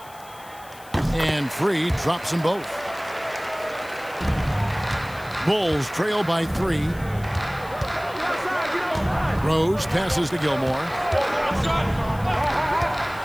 And free drops them both. Bulls trail by 3. Rose passes to Gilmore.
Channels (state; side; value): noise; left; hiss, 21 dB below the sound